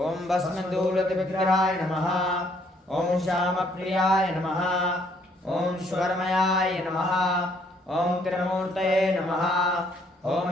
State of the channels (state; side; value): normal; both; correlation 0.66